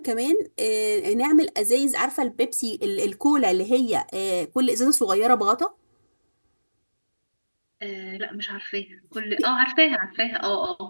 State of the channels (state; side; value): inverted; both; correlation -1.00